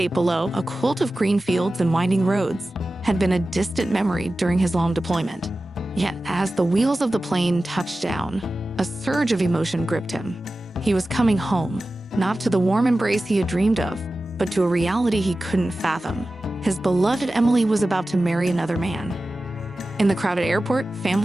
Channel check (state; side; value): normal; both; correlation 0.95